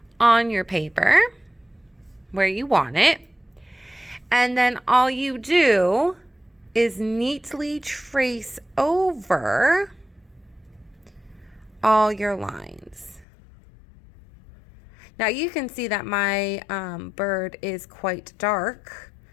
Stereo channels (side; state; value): right; drops out; at 13.2 s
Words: on your paper where you want it. And then all you do is neatly trace over all your lines. Now you can see that my bird is quite dark